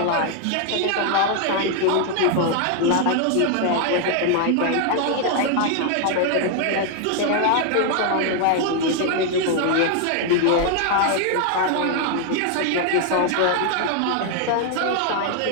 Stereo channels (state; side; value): different; both; correlation 0.00